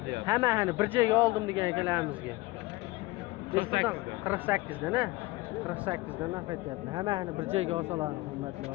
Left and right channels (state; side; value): quieter; right; 21.0 dB